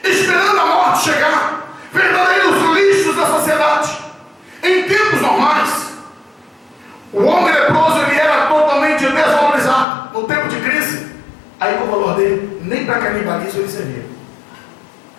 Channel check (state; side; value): drops out; right; at 9.9 s